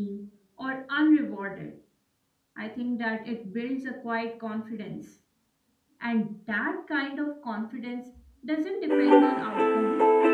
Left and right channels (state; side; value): identical; both; correlation 1.00